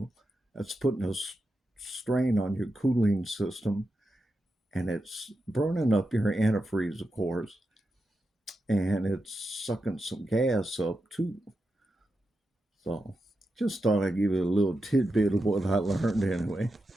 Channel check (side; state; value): both; normal; correlation 0.88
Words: That's putting a strain on your cooling system, and it's burning up your antifreeze, of course, and it's sucking some gas up too. So, just thought I'd give you a little tidbit of what I learned anyway.